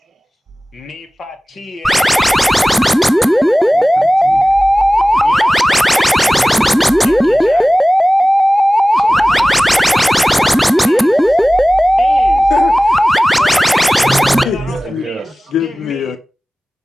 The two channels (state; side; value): normal; both; correlation 0.98